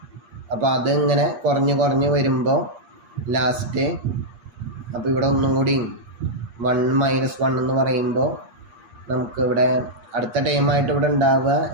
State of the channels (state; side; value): late; left; 8.4 ms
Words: അപ്പോൾ അത് ഇങ്ങനെ കുറഞ്ഞ് വരുമ്പോൾ ലാസ്റ്റ്, അപ്പോൾ ഇവിടെ ഒന്നും കൂടി 1 മൈനസ് 1 എന്ന് പറയുമ്പോൾ നമുക്ക് ഇവിടെ അടുത്ത ടൈമായിട്ട് ഇവിടെ ഉണ്ടാവുക